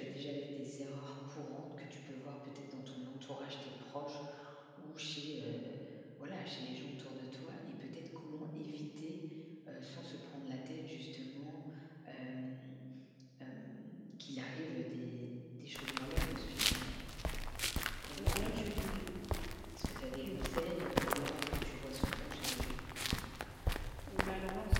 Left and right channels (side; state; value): both; identical; correlation 1.00